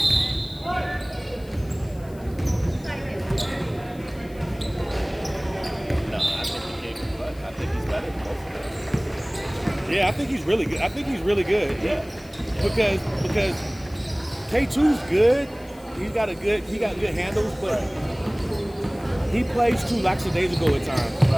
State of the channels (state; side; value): noise; left; hiss, 25 dB below the sound